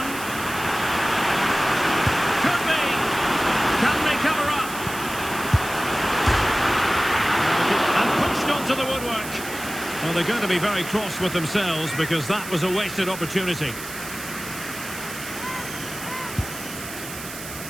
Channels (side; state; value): right; noise; hiss, 11 dB below the sound